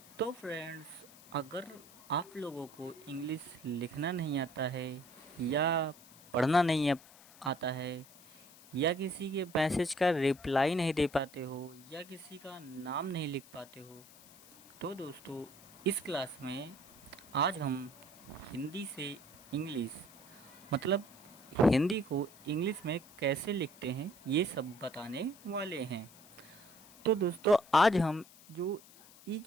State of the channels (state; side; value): noise; left; hiss, 22 dB below the sound